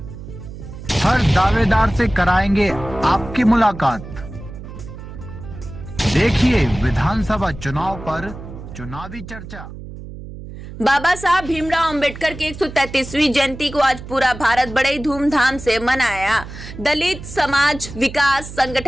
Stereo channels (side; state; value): right; noise; hum, 13 dB below the sound